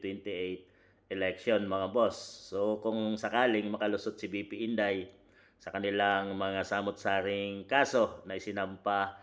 election, mga boss. So kung sakaling makalusot si BP Inday sa kanilang mga samot-saring kaso na isinampa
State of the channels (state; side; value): identical; both; correlation 1.00